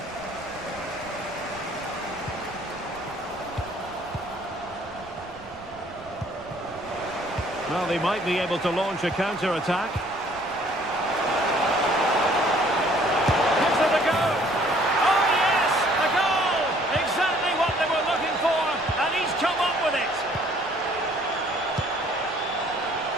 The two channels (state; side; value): noise; right; rumble, 23 dB below the sound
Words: Well, they might be able to launch a counter-attack.